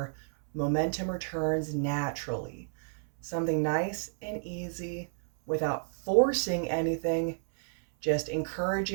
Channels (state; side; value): silent; left; 57 dB below the other